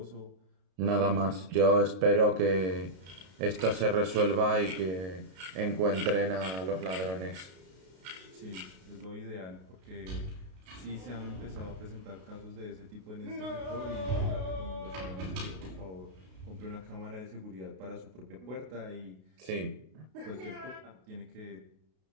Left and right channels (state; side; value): late; left; 32 ms